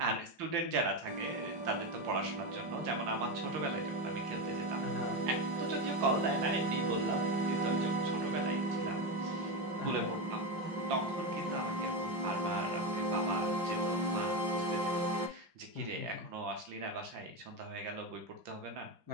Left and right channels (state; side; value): late; left; 5.5 ms